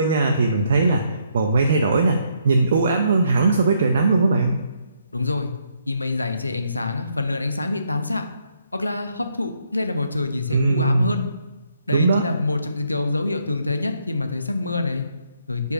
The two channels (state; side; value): inverted; both; correlation -0.73